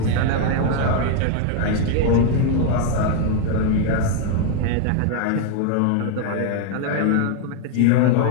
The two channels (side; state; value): both; different; correlation 0.00